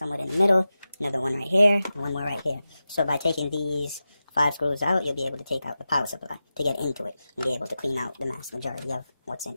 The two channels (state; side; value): inverted; both; correlation -0.93